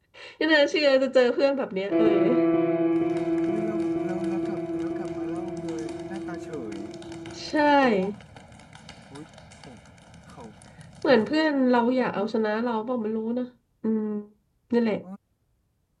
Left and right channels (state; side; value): identical; both; correlation 1.00